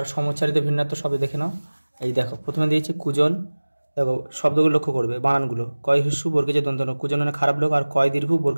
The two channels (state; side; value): inverted; both; correlation -1.00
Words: সমুচ্চারিত ভিন্নার্থক শব্দ দেখে নাও। এই দেখো প্রথমে দিয়েছে কুজন। দেখো শব্দগুলো লক্ষ্য করবে, বানানগুলো। কয় হিস্যু বর্গেজে দন্তন, কুজন মানে খারাপ লোক, আর কয় দীর্ঘ